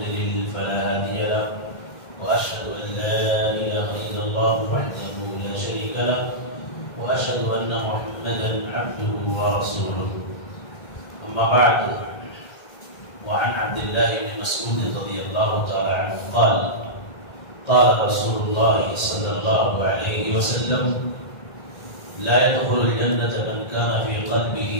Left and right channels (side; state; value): right; late; 1.8 ms